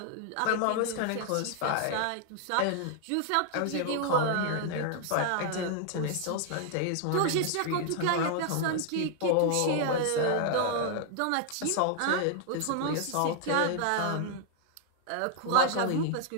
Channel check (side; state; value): both; different; correlation 0.00